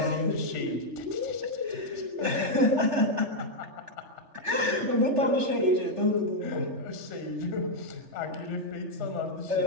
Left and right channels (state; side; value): late; left; 3.4 ms